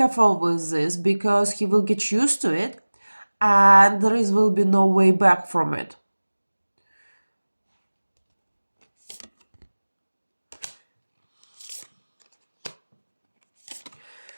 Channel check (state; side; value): inverted; both; correlation -1.00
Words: with this because he will get used to it and there will be no way back from it.